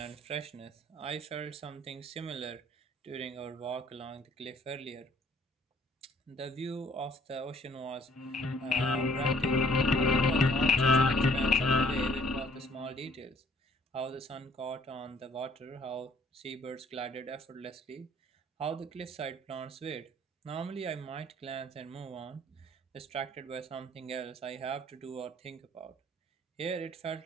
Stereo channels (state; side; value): normal; both; correlation 0.60